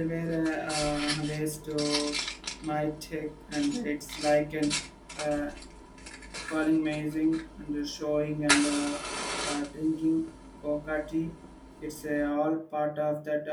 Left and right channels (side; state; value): both; identical; correlation 1.00